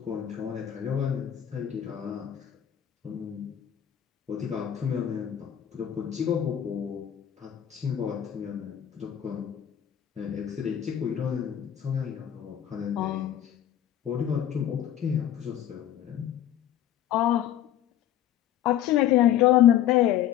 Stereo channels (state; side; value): quieter; right; 10.8 dB